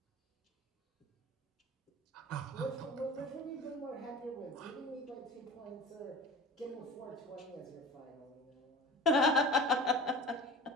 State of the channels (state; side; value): normal; both; correlation 0.38